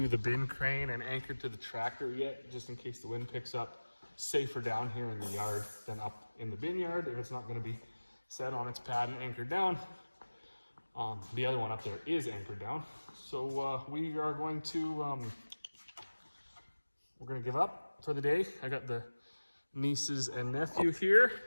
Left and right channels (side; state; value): both; inverted; correlation -1.00